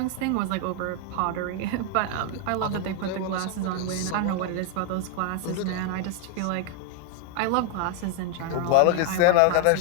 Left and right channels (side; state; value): both; different; correlation 0.01